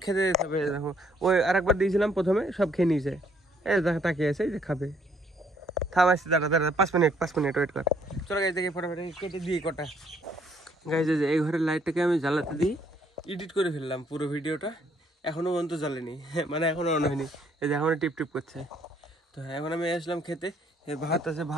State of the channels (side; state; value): both; normal; correlation 0.66